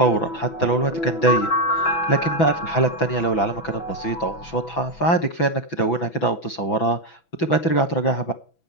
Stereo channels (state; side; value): late; right; 6.0 ms